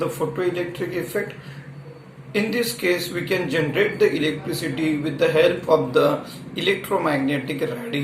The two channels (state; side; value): identical; both; correlation 1.00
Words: photoelectric effect. In this case we can generate the electricity with the help of the electromagnetic